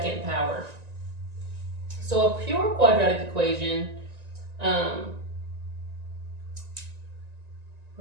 power. So a pure quadratic equation,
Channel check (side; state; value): left; late; 1.9 ms